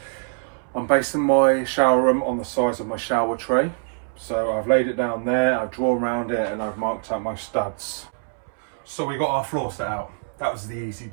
I'm basing my shower room on the size of my shower tray. So I've laid it down there, I've drawn around it and I've marked out my studs. So we got our floor set out. That was the easy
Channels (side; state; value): left; silent; 63 dB below the other